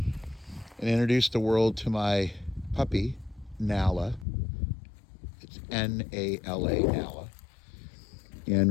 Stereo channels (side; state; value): right; drops out; at 4.2 s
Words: introduce the world to my puppy, Nala. It's Nala, Nala.